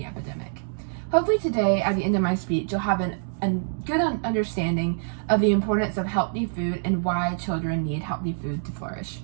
epidemic. Hopefully today, at the end of my speech, you'll have a good understanding of the importance of healthy food and why children need healthy food to flourish.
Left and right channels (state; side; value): silent; left; digital silence